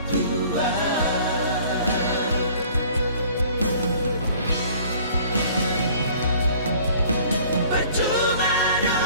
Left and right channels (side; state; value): both; inverted; correlation -0.52